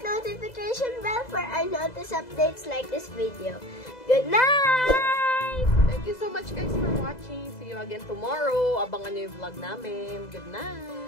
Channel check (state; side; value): late; right; 2.0 ms